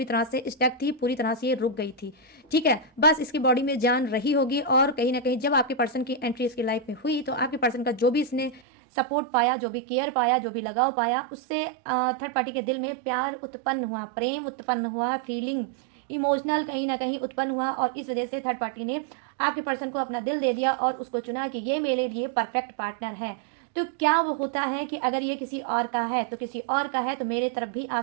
तरह से स्टक थी, पूरी तरह से ये रुक गई थी, ठीक है। बस इसकी बॉडी में जान रही होगी, और कहीं ना कहीं जब आपके पर्सन की एंट्री इसकी लाइफ में हुई, तो आपके पर्सन का जो भी इसने सपोर्ट पाया, जो भी केयर पाया, जो भी लगाव पाया, उससे थर्ड पार्टी के दिल में प्यार उत्पन्न हुआ, प्रेम उत्पन्न हुआ, फीलिंग इमोशनल कहीं ना कहीं उत्पन्न हुआ, और इस वजह से थर्ड पार्टी ने आपके पर्सन को अपना दिल दे दिया और उसको चुना कि ये मेरे लिए परफेक्ट पार्टनर है। तो क्या वो होता है कि अगर ये किसी और का है तो किसी और का है तो मेरे तरफ भी आ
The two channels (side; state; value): left; drops out; at 8.6 s